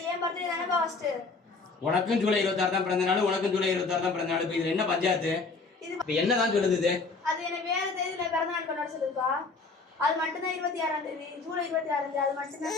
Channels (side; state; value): right; quieter; 4.1 dB